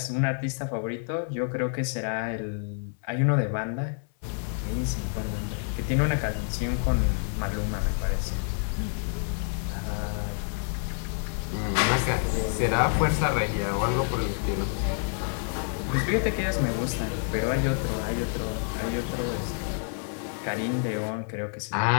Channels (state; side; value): silent; right; 59 dB below the other